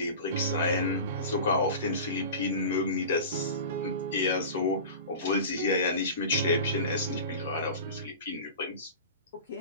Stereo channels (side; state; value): both; inverted; correlation -0.34